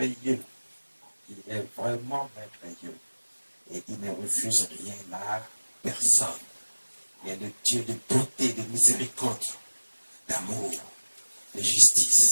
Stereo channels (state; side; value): inverted; both; correlation -1.00